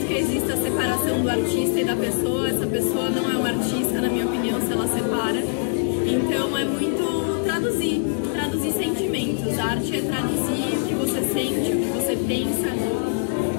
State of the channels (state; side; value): silent; right; digital silence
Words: que exista a separação do artista e da pessoa. Essa pessoa não é uma artista, na minha opinião, se ela separa. Então é muito traduzir sentimentos. A arte é traduzir o que você sente, o que você pensa,